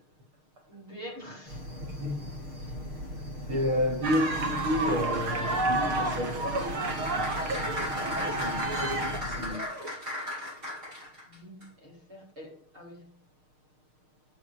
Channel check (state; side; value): late; left; 6.5 ms